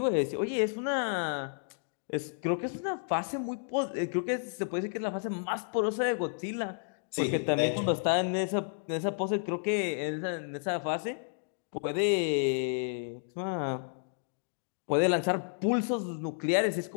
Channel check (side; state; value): right; silent; digital silence